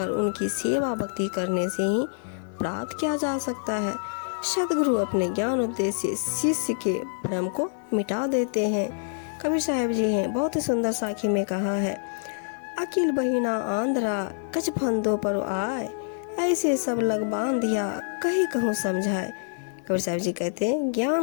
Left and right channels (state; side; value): silent; right; 61 dB below the other